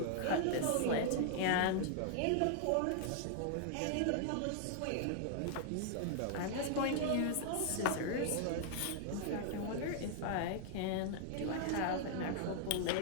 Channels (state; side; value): different; both; correlation -0.01